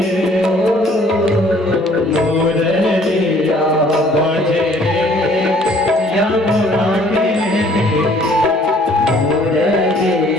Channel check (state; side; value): normal; both; correlation 0.58